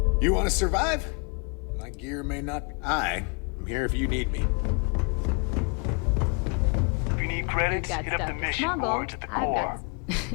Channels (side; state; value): right; quieter; 34.1 dB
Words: You want to survive? My gear may not be. I'm here if you need me. If you need credits, You've got hit up stuff the to mission smuggle. boards at the I've core. got.